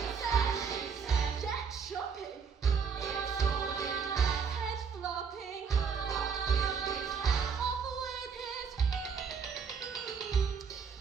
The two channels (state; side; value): quieter; left; 6.1 dB